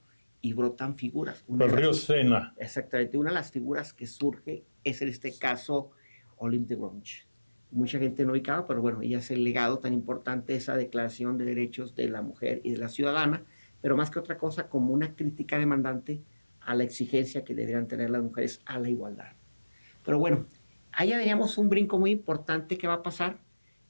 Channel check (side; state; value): both; inverted; correlation -1.00